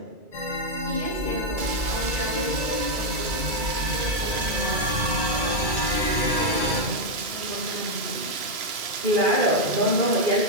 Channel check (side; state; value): left; late; 2.3 ms